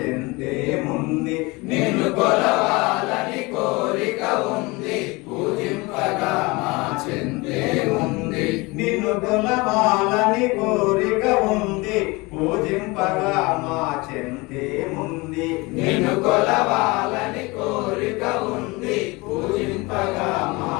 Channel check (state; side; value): quieter; right; 24.5 dB